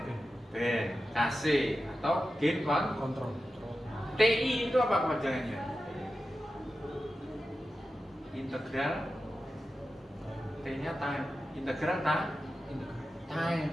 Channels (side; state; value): both; normal; correlation 0.92